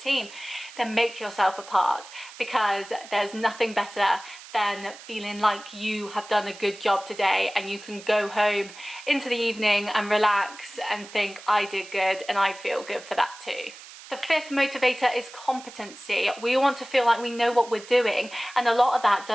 then make yourself a part, because there's nothing better than feeling like you have done a good job today and you can go home into the evening and relax and think, I did good and I feel good for that too. The fifth motivator is competency. We want to feel like we know what we're doing, and a lot of that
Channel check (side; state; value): right; noise; hiss, 17 dB below the sound